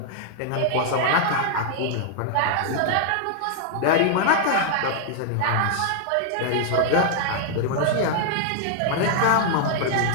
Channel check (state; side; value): different; both; correlation 0.00